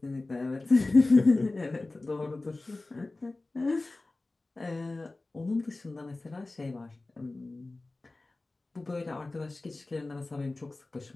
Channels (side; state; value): right; quieter; 3.1 dB